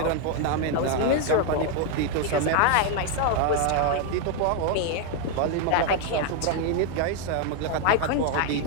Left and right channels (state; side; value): different; both; correlation 0.01